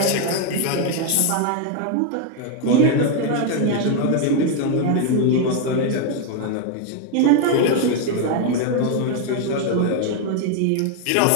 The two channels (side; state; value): both; different; correlation 0.01